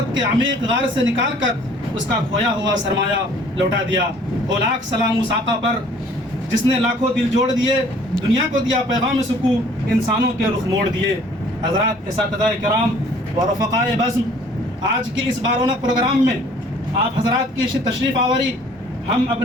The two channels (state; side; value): normal; both; correlation 0.55